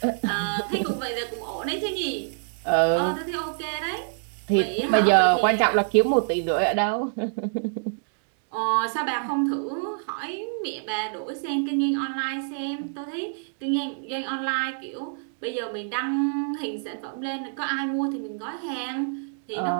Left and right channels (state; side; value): silent; left; digital silence